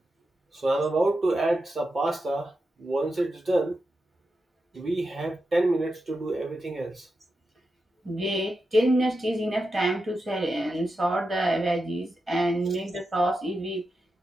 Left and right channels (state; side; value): normal; both; correlation 0.89